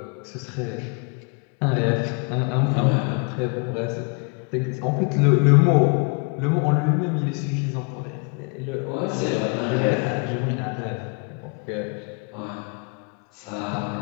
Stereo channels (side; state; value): right; quieter; 34.6 dB